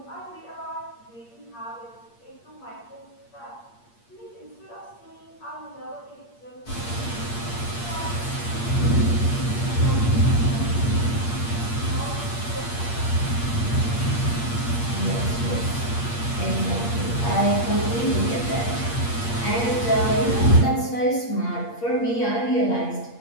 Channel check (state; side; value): late; right; 8.5 ms